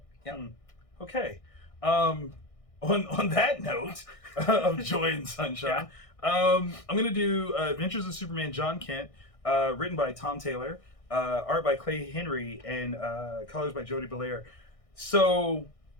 Yeah. Okay. On that note of joy and sunshine, I'm gonna do Adventures of Superman John Kent, written by Tom Taylor, art by Clay Henry, and colors by Jody Belair. So,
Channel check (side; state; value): right; late; 1.6 ms